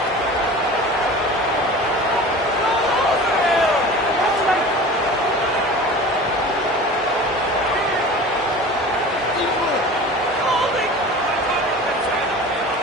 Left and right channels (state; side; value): normal; both; correlation 0.37